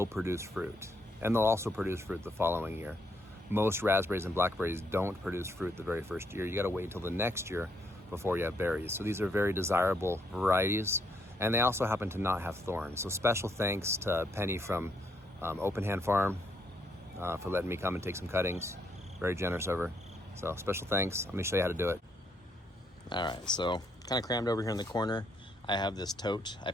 produce fruit. And they'll also produce fruit the following year. Most raspberries and blackberries don't produce fruit the very first year. You gotta wait until the next year before you have berries. So these are very desirable varieties, and they also happen to not have thorns. So special thanks to Penny from Open Hand Farm for letting me come and take some cuttings. Very generous of her. So special thanks. Let me show you how to do it. All right, so kind of crammed over here in the corner. I have this tote. I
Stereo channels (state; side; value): normal; both; correlation 0.73